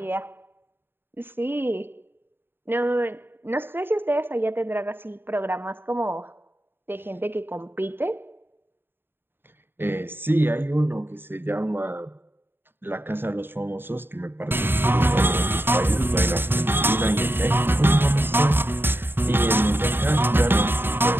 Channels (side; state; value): left; late; 0.10 ms